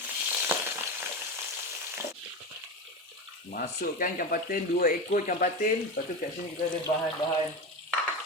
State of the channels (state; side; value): normal; both; correlation 0.22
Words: Masukkan ikan patin, 2 ekor ikan patin. Lepas tu kat sini kita ada bahan-bahan